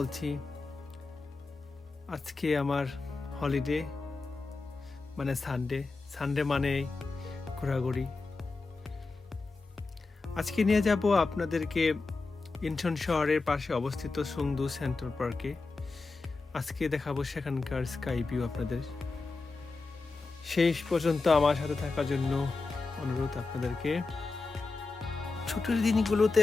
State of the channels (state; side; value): quieter; right; 3.9 dB